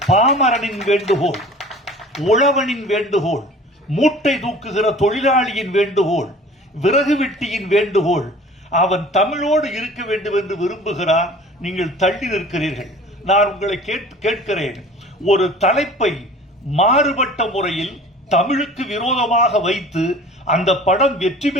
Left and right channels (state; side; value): normal; both; correlation 0.45